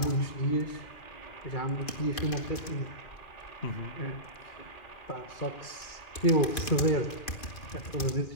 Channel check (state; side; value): late; right; 2.5 ms